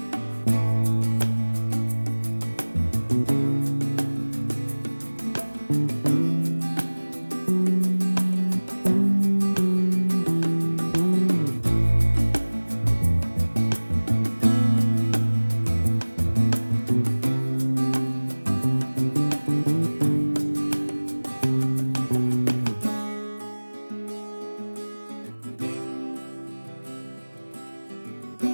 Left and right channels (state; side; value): inverted; both; correlation -1.00